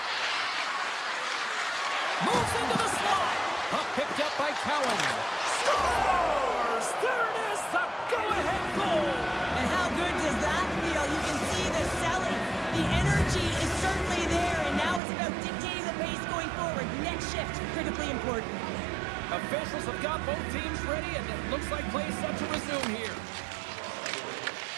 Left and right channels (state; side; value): drops out; left; at 15.0 s